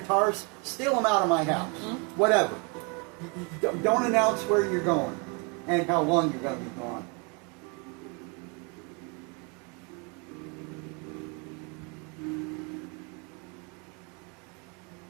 steal them out of my house. Whatever. Don't announce where you're going and how long you're going to be gone.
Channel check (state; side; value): quieter; left; 32.8 dB